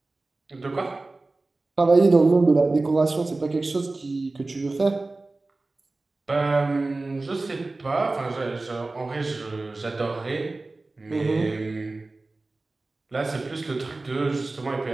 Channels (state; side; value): quieter; left; 3.2 dB